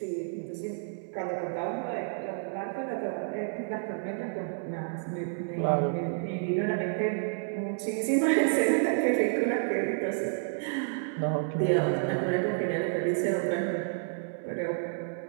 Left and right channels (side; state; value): left; silent; 58 dB below the other